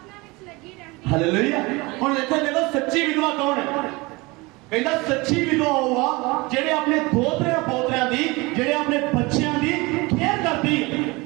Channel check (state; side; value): quieter; left; 24.3 dB